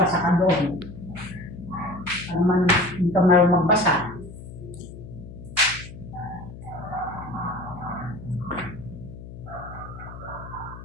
ka doon. Ano man, hindi ka meron magbasa.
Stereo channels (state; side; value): noise; left; hum, 14 dB below the sound